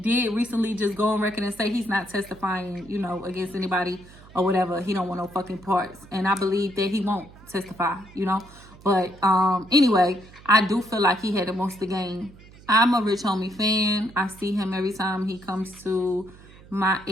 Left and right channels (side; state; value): right; noise; hum, 22 dB below the sound